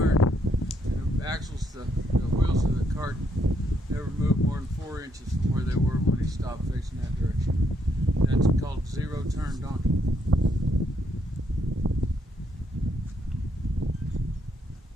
and the axles, the wheels of the cart never moved more than 4 inches from where they were when he stopped facing that direction. That's called zero turn donkey.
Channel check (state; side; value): normal; both; correlation 0.75